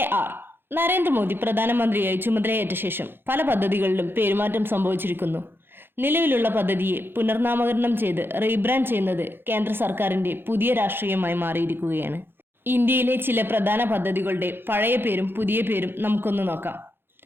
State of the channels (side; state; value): left; late; 0.10 ms